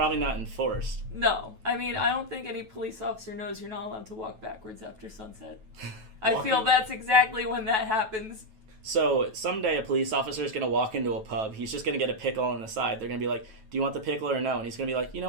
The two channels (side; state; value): left; late; 9.2 ms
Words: not enforced. No. I mean, I don't think any police officer knows you're not allowed to walk backwards after sunset. I feel that's exactly when that happens. So someday a police officer is going to walk into a pub. He's just going to get a pickle on the side. They're going to be like, do you want the pickle or no? And he's going to be like, you